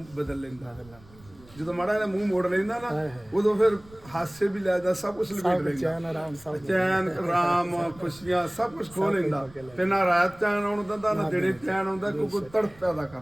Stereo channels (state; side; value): noise; right; rumble, 24 dB below the sound